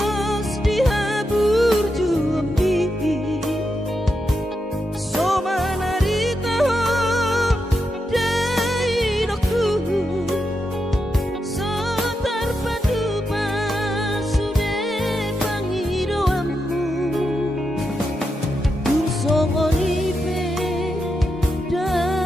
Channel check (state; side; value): normal; both; correlation 0.86